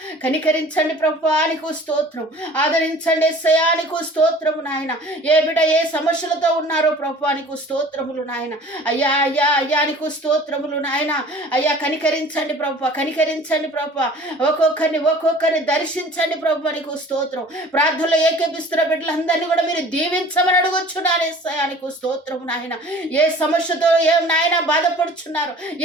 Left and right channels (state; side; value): normal; both; correlation 0.47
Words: కనికరించండి ప్రభువా, నీకు స్తోత్రం. ఆదరించండి యేసయ్య, నీకు స్తోత్రము నాయన. ఏ బిడ్డ ఏ సమస్యలతో ఉన్నారో ప్రభువా, నీకు స్తోత్రములు నాయన. అయ్యా అయ్యా అయ్యా నీకు స్తోత్రములు నాయన. అయ్యా కనికరించండి ప్రభువా, కనికరించండి ప్రభువా. ఒక్కొక్కరిని దర్శించండి ప్రభువా, నీకు స్తోత్రం. ప్రార్థనలో ఏకేపిస్తున్న బిడ్డలందరినీ కూడా మీరు దీవించమని అడుగుచున్నాను యేసయ్య, నీకు స్తోత్రము నాయన. ఏ సమస్యతో ఏ నాయన బాధపడుచున్నారు,